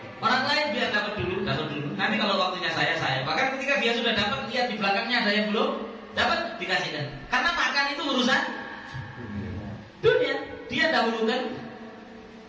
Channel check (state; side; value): identical; both; correlation 1.00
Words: biar dapat dulu. Nanti kalau waktunya saya. Bahkan ketika dia sudah dapat, lihat di belakangnya ada yang belum dapat, dikasihkan. Karena makan itu urusan dunia, dia dahulukan